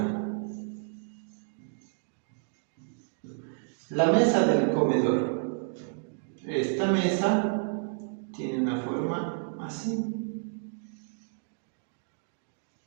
La mesa del comedor. Esta mesa tiene una forma así.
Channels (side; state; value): left; silent; digital silence